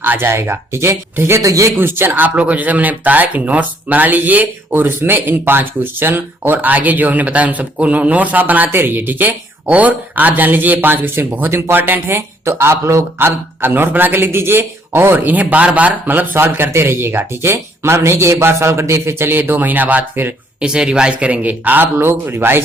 आ जाएगा, ठीक है। तो ये क्वेश्चन आप लोगों को जैसे मैंने बताया कि नोट्स बना लीजिए और उसमें इन 5 क्वेश्चन और आगे जो हमने बताया उन सबको नोट्स आप बनाते रहिए, ठीक है। और आप जान लीजिए ये 5 क्वेश्चन बहुत इंपॉर्टेंट है, तो आप लोग अब नोट बना के लिख दीजिए और इन्हें बार बार मतलब सॉल्व करते रहिएगा, ठीक है। मतलब नहीं कि एक बार सॉल्व कर दिए फिर चलिए 2 महीना बाद फिर इसे रिवाइज करेंगे, आप लोग रिवाइज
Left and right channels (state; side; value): normal; both; correlation 0.66